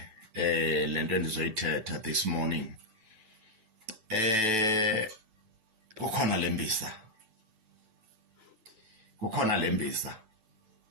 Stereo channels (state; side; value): late; left; 9.1 ms